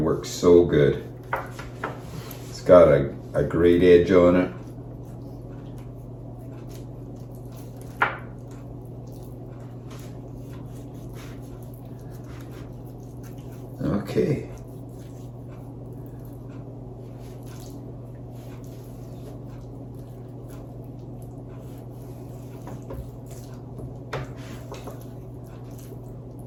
works so good. Got a great edge on it. Okay.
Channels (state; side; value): identical; both; correlation 1.00